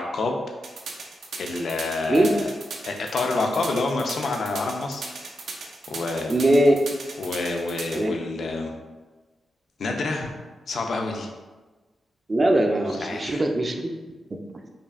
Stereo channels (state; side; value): normal; both; correlation 0.88